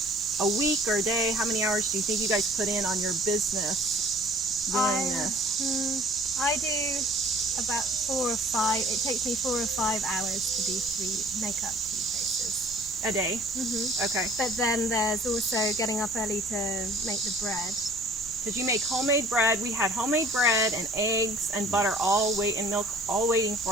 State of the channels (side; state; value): left; noise; rumble, 22 dB below the sound